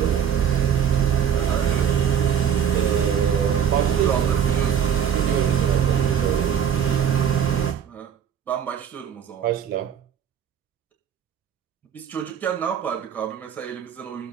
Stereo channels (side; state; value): left; quieter; 8.5 dB